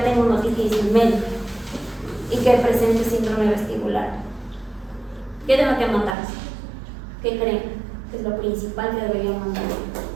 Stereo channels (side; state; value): left; drops out; at 6.2 s